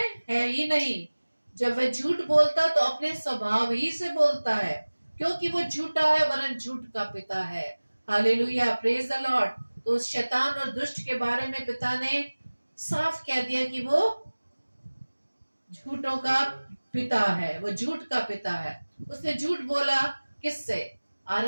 है ही नहीं। जब वह झूठ बोलता तो अपने स्वभाव ही से बोलता है, क्योंकि वो झूठा है वरन झूठ का पिता है। Hallelujah, praise the Lord. तो उस शैतान और दुष्ट के बारे में पिता ने साफ कह दिया कि वो झूठों का पिता है, वो झूठ का पिता है। उसने झूठ बोला किससे?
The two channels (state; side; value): inverted; both; correlation -1.00